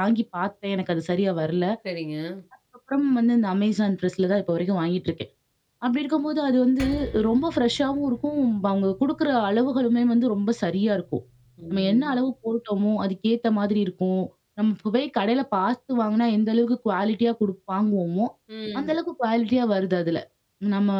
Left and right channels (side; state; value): both; identical; correlation 1.00